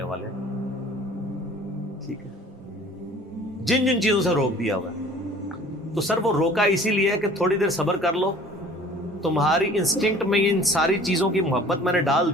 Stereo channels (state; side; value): normal; both; correlation 0.49